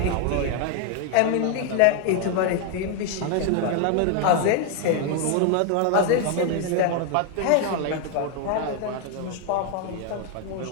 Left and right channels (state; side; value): different; both; correlation 0.00